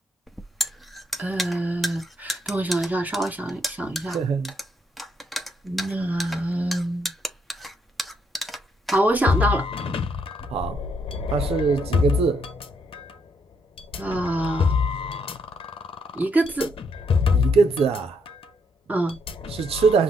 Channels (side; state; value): both; normal; correlation 0.74